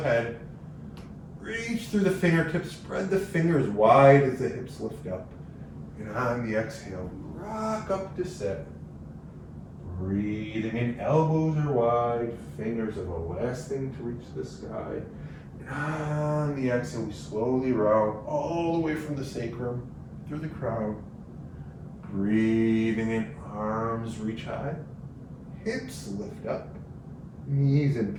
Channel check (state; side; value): identical; both; correlation 1.00